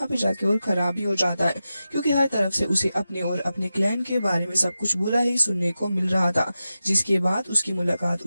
पे जाके और खराब ही हो जाता है, क्योंकि हर तरफ से उसे अपने और अपने क्लैन के बारे में सब कुछ बुरा ही सुनने को मिल रहा था। जिसके बाद उसकी मुलाकात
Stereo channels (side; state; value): both; inverted; correlation -0.92